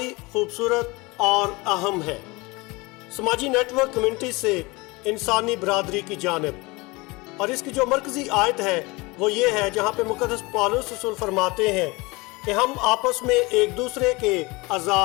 खूबसूरत और अहम है। समाजी नेटवर्क कम्युनिटी से इंसानी बरादरी की जानिब, और इसकी जो मरकजी आयत है वो ये है जहाँ पे मुक़द्दस पौलुस रसूल फरमाते हैं कि हम आपस में एक दूसरे के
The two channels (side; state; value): right; quieter; 24.3 dB